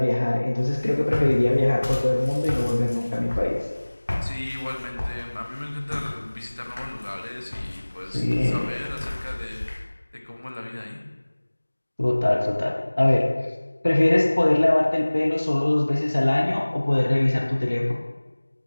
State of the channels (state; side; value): inverted; both; correlation -1.00